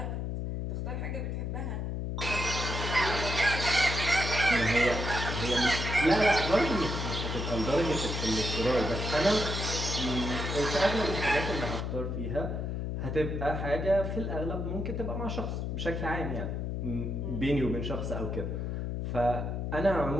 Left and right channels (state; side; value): noise; left; hum, 2 dB below the sound